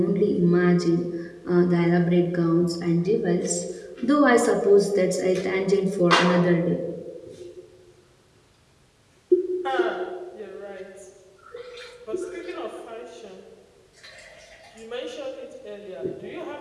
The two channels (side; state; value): both; identical; correlation 1.00